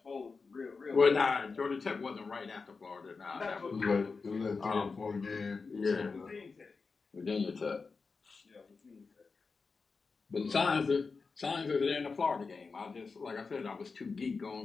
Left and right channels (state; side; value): quieter; right; 4.6 dB